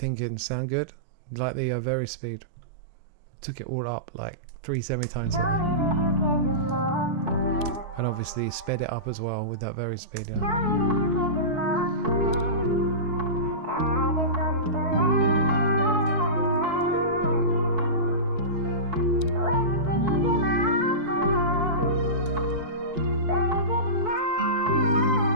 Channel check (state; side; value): late; left; 4.6 ms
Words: Sound good? Like the Verispeed? Took it all up like 3 semitones. And obviously sped it up as well with that Verispeed. Yeah.